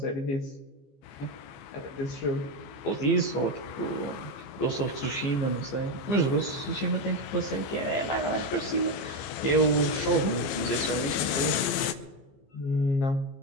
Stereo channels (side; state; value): right; late; 15 ms